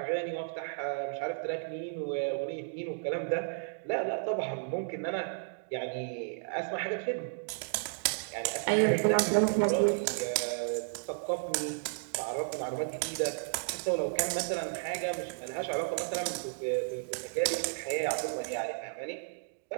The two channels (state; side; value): silent; left; digital silence